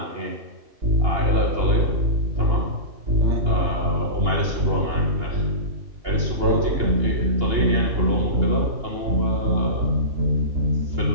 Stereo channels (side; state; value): left; late; 2.9 ms